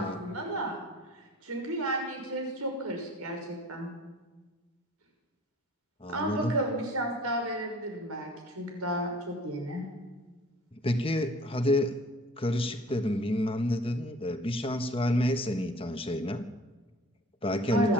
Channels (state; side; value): normal; both; correlation 0.48